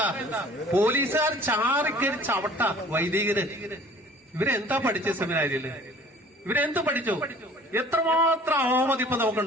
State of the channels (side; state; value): both; normal; correlation 0.50